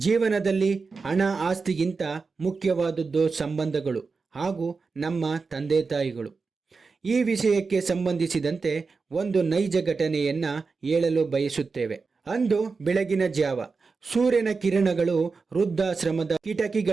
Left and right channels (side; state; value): left; quieter; 4.6 dB